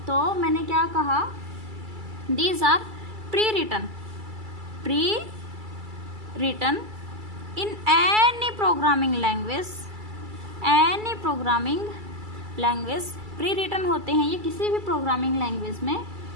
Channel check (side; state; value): left; late; 2.3 ms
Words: तो मैंने क्या कहा? These are pre written in any programming language pre written होते हैं ये किसी भी प्रोग्रामिंग लैंग्वेज में,